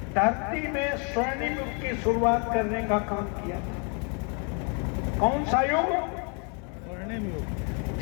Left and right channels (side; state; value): right; quieter; 37.2 dB